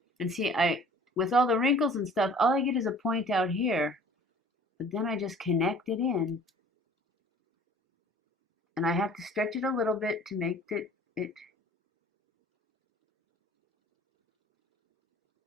And see, with all the wrinkles and stuff, all I get is a point out here, but then I just connect it in, and I have to stretch it a little bit to make it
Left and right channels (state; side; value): normal; both; correlation 0.50